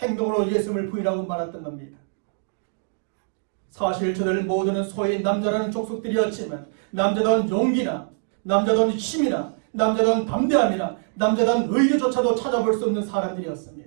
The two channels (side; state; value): left; silent; digital silence